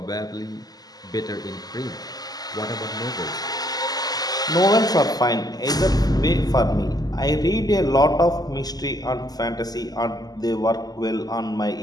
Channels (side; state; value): right; late; 0.19 ms